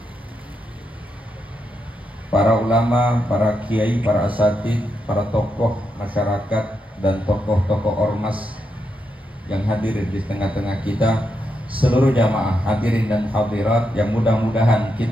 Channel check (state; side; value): normal; both; correlation 0.83